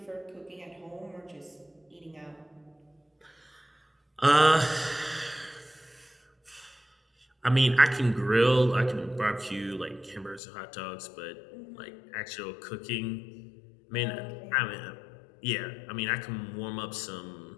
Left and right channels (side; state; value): right; drops out; at 10.4 s